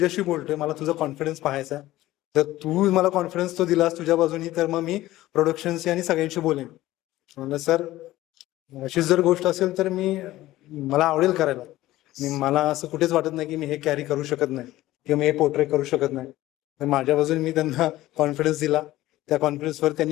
बोलतोय, मला तुझा कॉन्फिडन्स पाहायचा आहे. जर तू मला कॉन्फिडन्स तो दिलास तुझ्या बाजूनी तर मग मी प्रोडक्शनशी आणि सगळ्यांशी बोलेन. म्हणलं सर अशीच जर गोष्ट असेल तर मला आवडेल करायला. मला असं कुठेच वाटत नाही की मी हे कॅरी करू शकत नाही किंवा मी हे पोर्ट्रे करू शकत नाही. तर माझ्या बाजूने मी त्यांना कॉन्फिडन्स दिला. त्या कॉन्फिडन्सवर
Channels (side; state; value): right; quieter; 16.1 dB